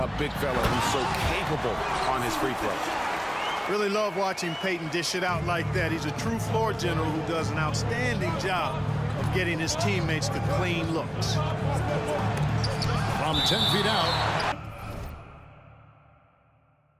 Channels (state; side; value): identical; both; correlation 1.00